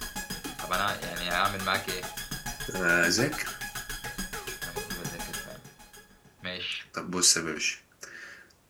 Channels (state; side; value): identical; both; correlation 1.00